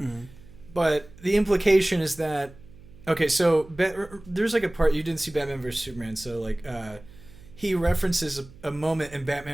But the implication is that okay, so there's like a part you didn't see Batman vs Superman, so like he references a moment in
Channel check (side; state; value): right; noise; hum, 21 dB below the sound